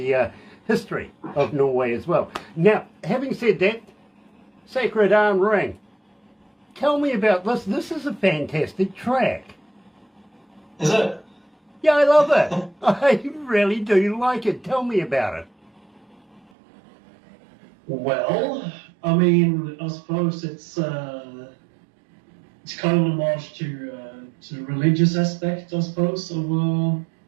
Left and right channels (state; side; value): drops out; left; at 16.4 s